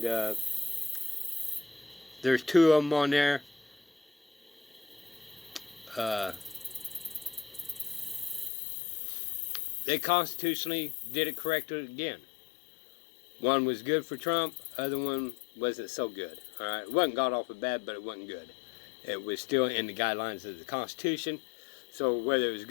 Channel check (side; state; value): right; drops out; at 8.5 s